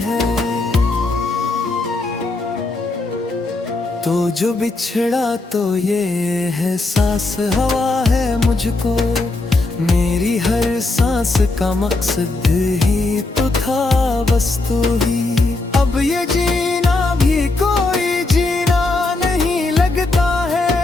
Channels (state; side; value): quieter; right; 3.2 dB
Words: है। तो जो बिछड़ा तो ये है सांस हवा है मुझको। मेरी हर सांस का मकसद ही तो था बस तू ही।